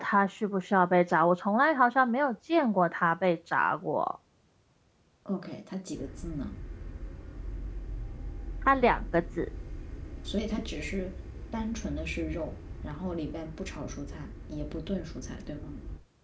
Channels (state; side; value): identical; both; correlation 1.00